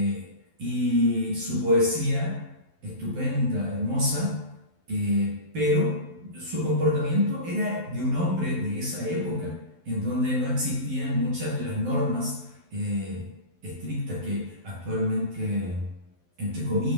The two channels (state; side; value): late; left; 12 ms